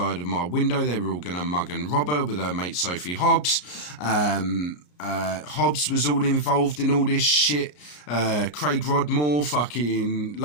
of my window, they were all going to mug and rob her with her mate Sophie Hobbs. Hobbs was all involved in all this shit. Craig Rodmore, fucking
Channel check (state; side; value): late; right; 34 ms